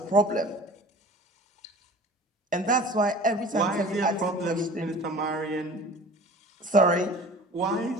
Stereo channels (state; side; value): normal; both; correlation 0.43